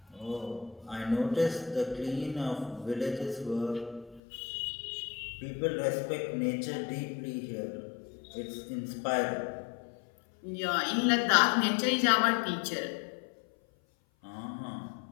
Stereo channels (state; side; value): drops out; right; at 4.2 s